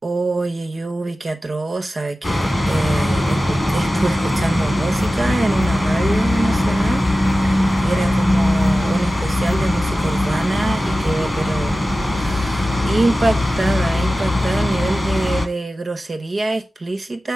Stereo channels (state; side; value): normal; both; correlation 0.95